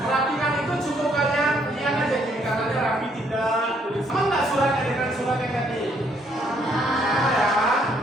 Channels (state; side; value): normal; both; correlation 0.69